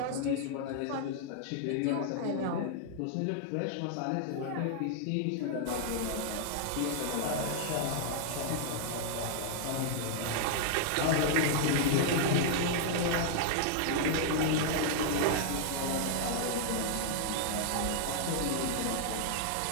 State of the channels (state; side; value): different; both; correlation -0.01